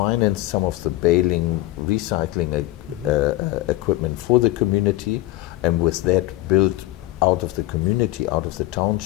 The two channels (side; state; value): right; quieter; 17.1 dB